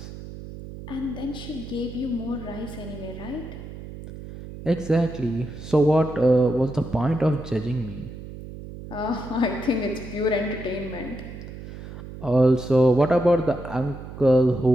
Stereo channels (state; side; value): noise; right; hum, 12 dB below the sound